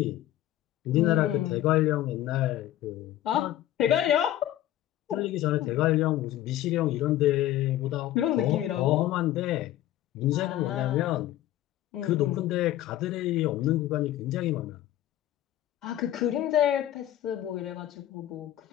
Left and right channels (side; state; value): right; quieter; 13.5 dB